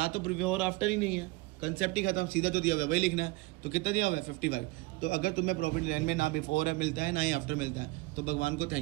तो बिफोर आफ्टर ही नहीं है, कंसेप्ट ही खत्म, सीधा जो दिया हुआ है वही लिखना है। तो कितना दिया हुआ है? 55। तो अगर तुम्हें प्रॉफिट लाइन में ना बिफोर है मिलता है ना ही आफ्टर मिलता है, तो भगवान को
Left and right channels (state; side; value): quieter; left; 22.5 dB